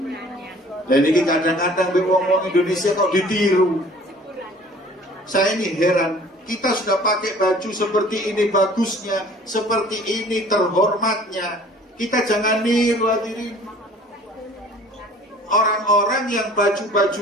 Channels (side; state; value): both; normal; correlation 0.50